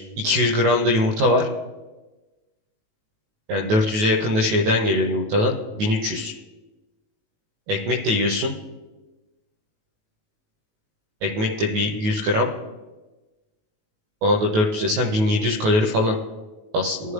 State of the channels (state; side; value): late; left; 19 ms